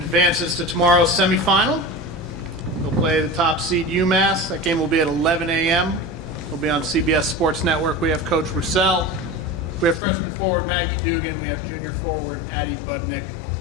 to tomorrow's semifinal. They'll play the top seed UMass. That game will be at 11 a.m. It'll be on CBS Sports Network. We have Coach Roussel. We have freshman forward Maggie Dugan. We have junior forward Addie Budnick.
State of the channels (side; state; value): right; drops out; at 10.0 s